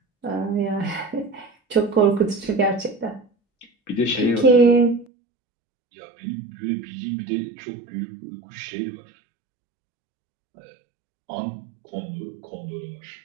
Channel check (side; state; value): left; drops out; at 5.1 s